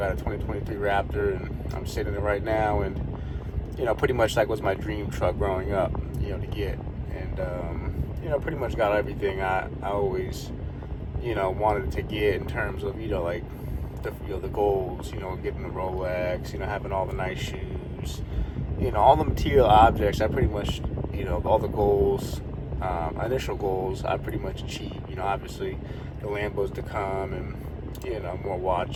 a 2023 Raptor, and I'm sitting in it right now, and pretty much was my dream truck growing up, to get, and pretty much got everything I always wanted to get in terms of the goals, getting the Rolex, having all the nice shoes, all the material objects. I pretty much all the goals, initial goals, I pretty much achieved. Obviously the Lambos to come, and more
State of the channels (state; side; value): identical; both; correlation 1.00